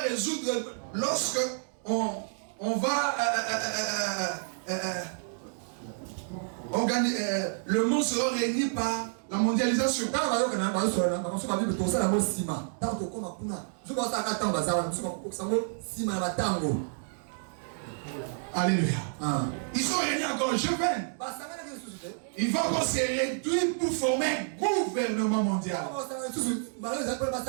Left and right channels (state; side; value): silent; left; digital silence